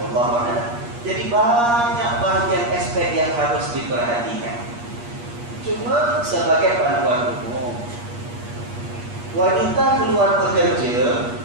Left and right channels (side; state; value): left; late; 8.4 ms